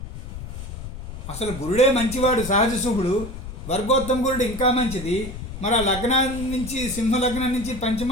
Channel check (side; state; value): left; noise; rumble, 10 dB below the sound